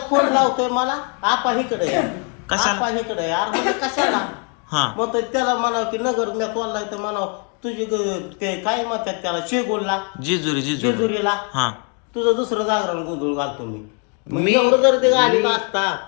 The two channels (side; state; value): right; quieter; 37.6 dB